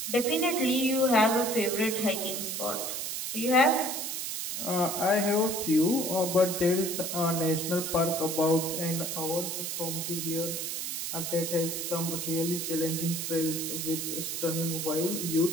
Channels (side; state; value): right; noise; hiss, 3 dB below the sound